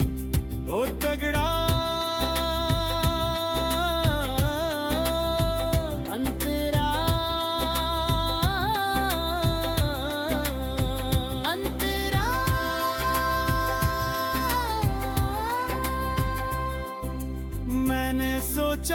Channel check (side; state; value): both; identical; correlation 1.00